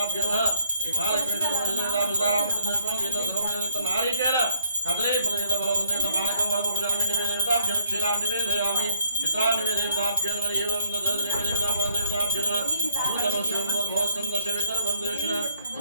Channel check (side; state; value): both; inverted; correlation -0.68